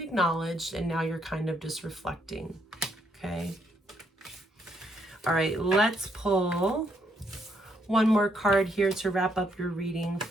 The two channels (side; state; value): both; normal; correlation 0.74